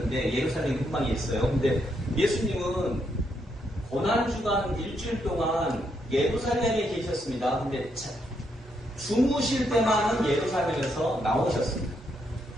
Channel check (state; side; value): normal; both; correlation 0.78